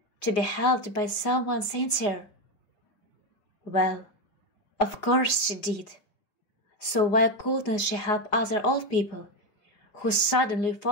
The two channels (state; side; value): late; right; 4.9 ms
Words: to be helped by someone sincere? Well, of course she did. So why couldn't she help other old people who suddenly